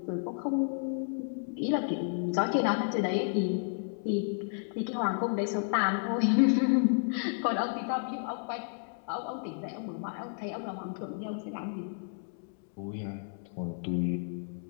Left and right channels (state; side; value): silent; right; 57 dB below the other